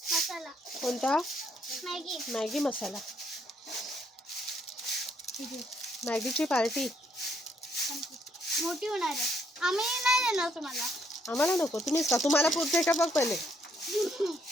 मसाला. कोणता? मॅगी. मॅगी मसाला. मॅगीची पार्टी मोठी होणार आहे. आम्ही नाही देणार तुम्हाला. आम्हाला नको, तुम्हीच का? तुम्हाला पुरते का बघ पहिले.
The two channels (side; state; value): both; normal; correlation 0.70